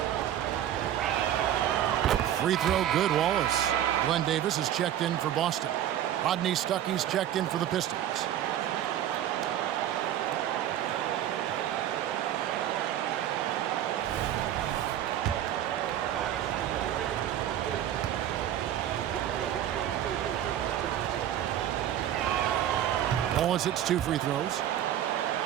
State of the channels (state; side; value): quieter; left; 11.3 dB